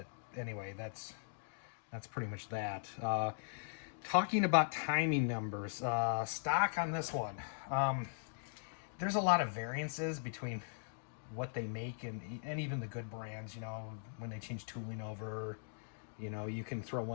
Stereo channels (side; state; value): right; silent; digital silence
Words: anyway, that's pretty much that. Talking about timing numbers, stock on this one. There's a lot of variances between what they make and even the good brands. You know, when they change tooling over, you know, you can throw